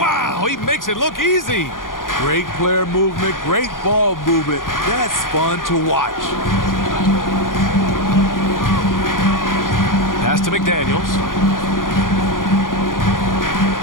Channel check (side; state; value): right; late; 0.90 ms